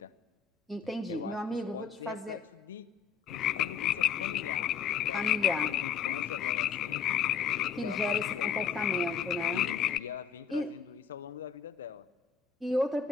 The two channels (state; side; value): quieter; right; 7.0 dB